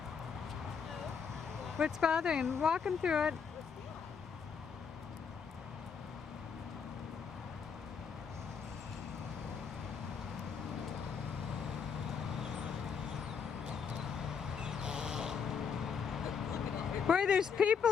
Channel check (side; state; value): right; quieter; 6.4 dB